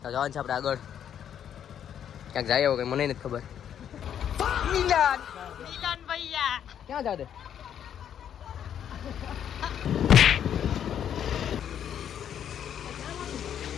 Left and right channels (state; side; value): quieter; right; 9.3 dB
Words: જવાનું છે આપણે આગળ ક્યાંક જાય કઈ મને નથી ખબર મિલન ભૈયા ક્યાં જાવ દે